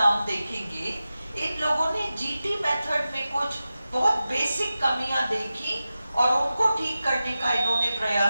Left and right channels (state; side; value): inverted; both; correlation -0.94